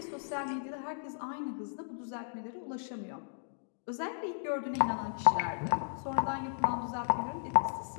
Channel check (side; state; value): right; silent; digital silence